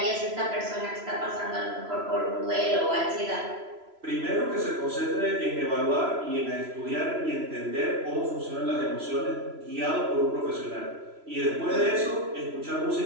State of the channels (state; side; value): late; left; 3.0 ms